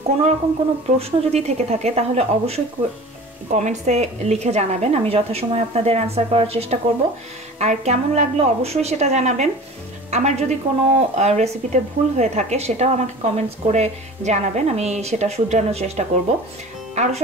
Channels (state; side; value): normal; both; correlation 0.40